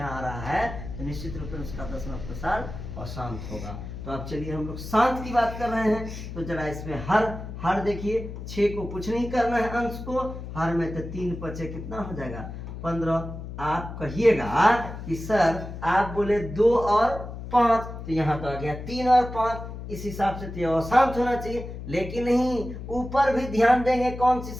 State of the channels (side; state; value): left; noise; hum, 9 dB below the sound